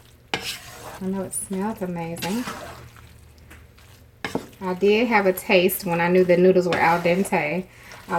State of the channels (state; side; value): identical; both; correlation 1.00